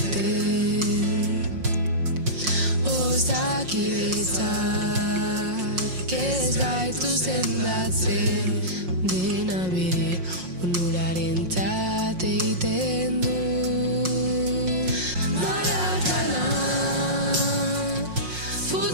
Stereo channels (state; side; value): late; left; 5.6 ms